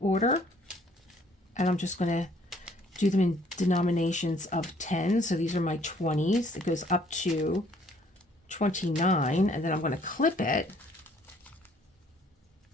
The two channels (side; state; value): both; normal; correlation 0.61